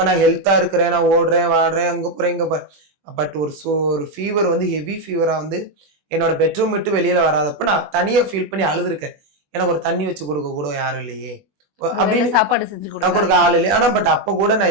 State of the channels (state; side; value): late; left; 20 ms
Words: நான் ஹெல்த்தா இருக்கிறேன், நான் ஓடுறேன் வாடுறேன் அங்க போறேன் இங்க போறேன், பட் ஒரு ஃபீவர் வந்து ஹெவி ஃபீவரா வந்து என்னோட பெட்ரூம் விட்டு வெளியில வராதப்ப நான் தனியா ஃபீல் பண்ணி அழுதுருக்கேன். எனக்கு ஒரு தண்ணி வச்சு கொடுக்க கூட யாரும் இல்லையே அப்படின்னு, சாப்பாடு செஞ்சு கொடுக்க ஆள் இல்லையே. ஆனா பட் அப்ப கூட